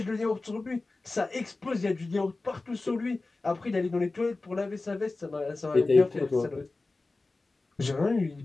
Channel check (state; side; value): quieter; right; 3.4 dB